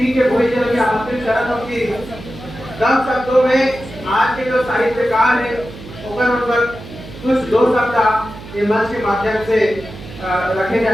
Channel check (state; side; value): noise; right; hum, 15 dB below the sound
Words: के भोईजन के आमंत्रित करत हूँ कि कम शब्दों में आज के जो साहित्यकार है उनकर कुछ दो शब्द ये मंच के माध्यम से रखे